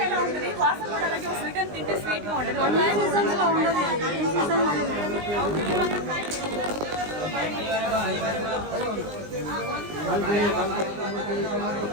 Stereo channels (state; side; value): late; left; 19 ms